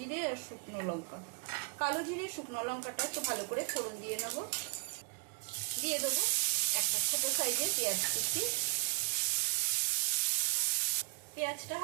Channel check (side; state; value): left; quieter; 40.0 dB